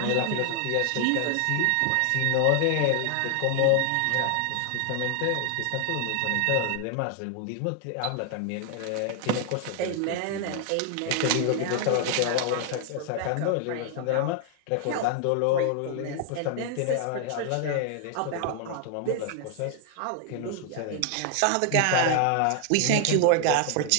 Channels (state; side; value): different; both; correlation 0.00